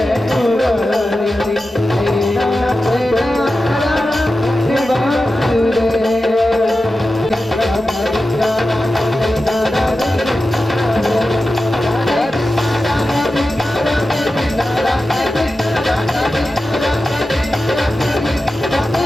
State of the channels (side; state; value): both; normal; correlation 0.92